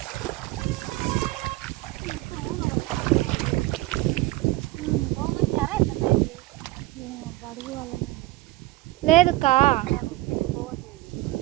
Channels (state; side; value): quieter; left; 18.6 dB